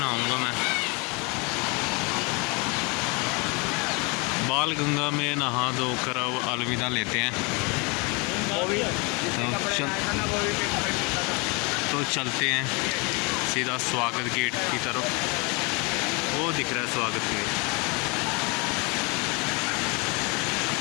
मैं। बाल गंगा में नहा धोकर अब अलविदा लेते हैं। तो चलते हैं सीधा स्वागत गेट की तरफ। वो दिख रहा है स्वागत गेट।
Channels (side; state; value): right; quieter; 30.1 dB